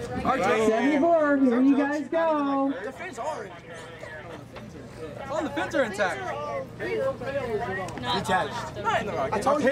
74, here you guys go. The fins are oh, the fins are intact. Detached. I told you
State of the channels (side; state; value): both; identical; correlation 1.00